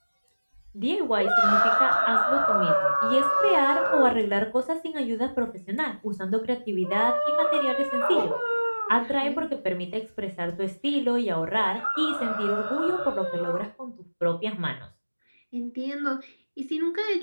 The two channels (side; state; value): both; inverted; correlation -1.00